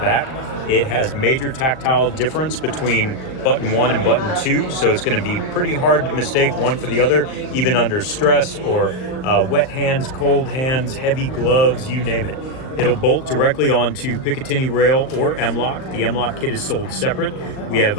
It has major tactile difference between button 1 and button 2, so it's going to be pretty hard to mistake one for the other, even under stress or wet hands, cold hands, heavy gloves, you name it. It'll bolt directly onto Picatinny rail or M-LOK. The M-LOK kit is sold separate. We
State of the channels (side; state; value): right; late; 38 ms